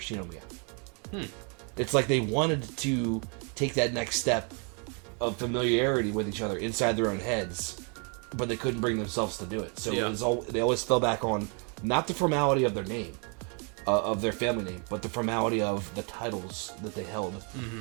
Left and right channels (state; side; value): quieter; left; 36.6 dB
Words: It's like they wanted to take that next step of familiarity with each other inside their own heads, but they couldn't bring themselves to do it. So it was they always fell back on not the formality of their name, of their family name, but the formality of the titles that they held